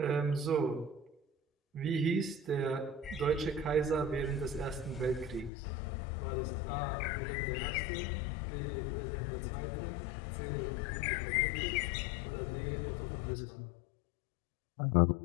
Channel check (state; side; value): drops out; right; at 5.5 s